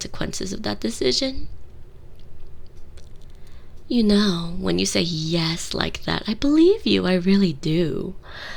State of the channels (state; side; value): identical; both; correlation 1.00